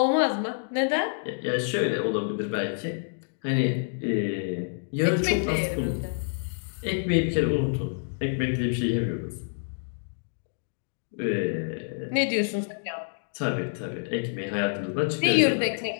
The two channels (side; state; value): right; silent; digital silence